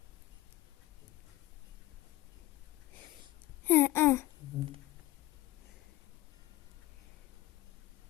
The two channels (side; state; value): right; quieter; 17.9 dB